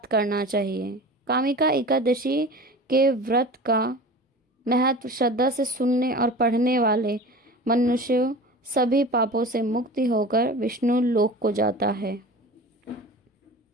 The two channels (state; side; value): normal; both; correlation 0.36